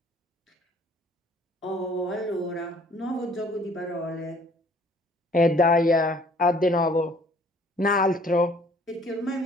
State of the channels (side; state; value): both; normal; correlation 0.57